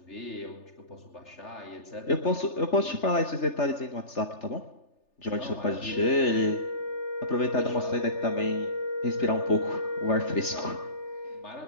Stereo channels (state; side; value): late; right; 3.4 ms